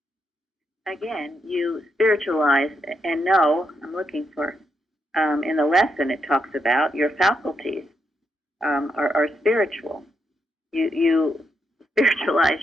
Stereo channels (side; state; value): both; normal; correlation 0.81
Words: Again, you spiritualize and know, I'm looking for, in the lesson it talks about your faculties are spiritual. You spiritualize